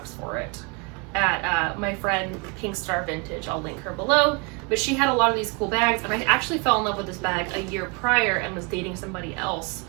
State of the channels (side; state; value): left; quieter; 30.8 dB